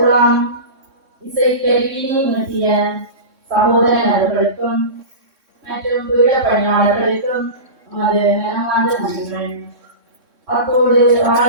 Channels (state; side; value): late; left; 3.6 ms